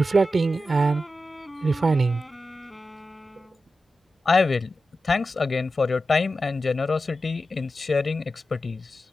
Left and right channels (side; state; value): both; normal; correlation 0.91